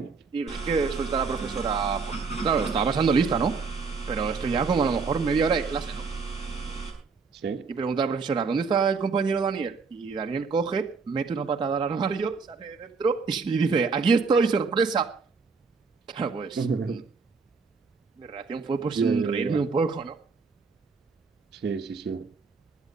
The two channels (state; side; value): quieter; left; 4.8 dB